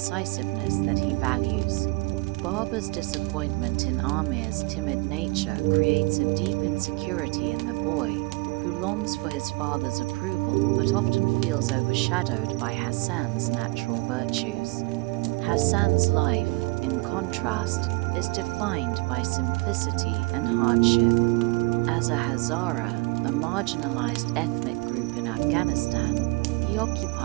that he values. Barber's disappointment in Amir's timid nature creates a deep insecurity in the boy, who longs for his father's approval but often feels overshadowed by Hassan's natural virtues. Hassan's life, in contrast, is defined by simplicity and hardship. As a Hazara, a marginalized ethnic group in Afghanistan, he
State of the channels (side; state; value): left; quieter; 25.7 dB